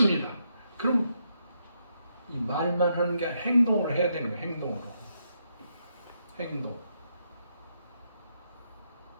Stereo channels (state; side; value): inverted; both; correlation -0.79